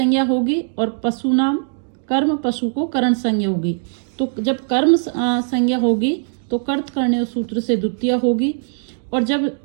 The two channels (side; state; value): left; silent; digital silence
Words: होगी और पशु नाम कर्म, पशु को कर्ण संज्ञा होगी। तो जब कर्म संज्ञा होगी तो कर्त करने सूत्र से द्वितीय होगी, और जब